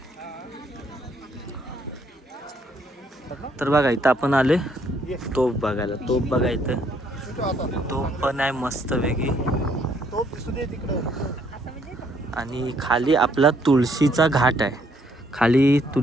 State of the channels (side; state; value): both; normal; correlation 0.68